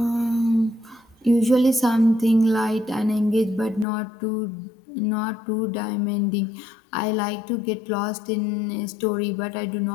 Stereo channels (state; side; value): drops out; right; at 3.9 s